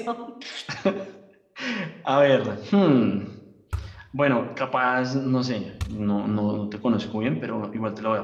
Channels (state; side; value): identical; both; correlation 1.00